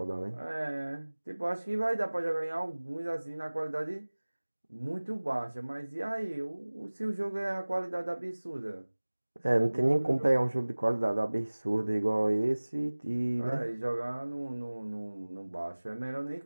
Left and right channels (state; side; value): inverted; both; correlation -1.00